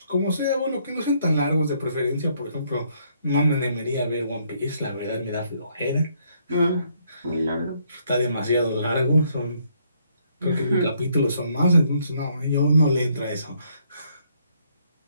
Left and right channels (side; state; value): both; inverted; correlation -0.70